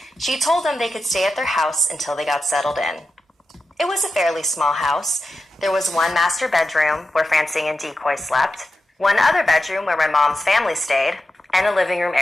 She told them they could stay at their house until they got settled in. It was a fairly small house. There was one master bedroom where Francine and Decoy slept, one other bedroom where my mom's family stayed, and a living room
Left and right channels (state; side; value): normal; both; correlation 0.90